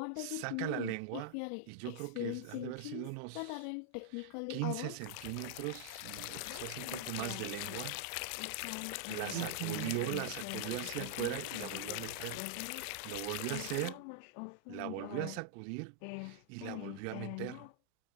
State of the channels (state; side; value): different; both; correlation -0.01